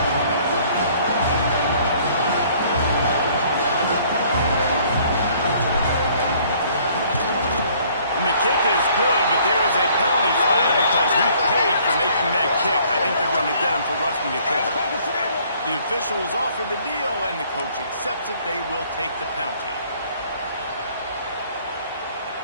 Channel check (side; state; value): both; inverted; correlation -0.59